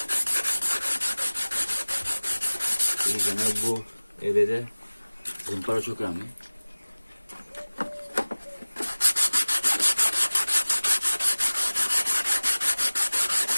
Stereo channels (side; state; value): both; inverted; correlation -1.00